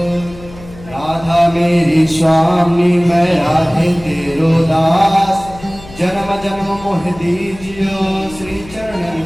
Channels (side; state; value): left; noise; hum, 18 dB below the sound